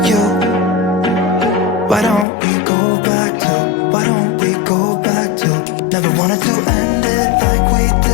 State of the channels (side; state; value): right; drops out; at 2.2 s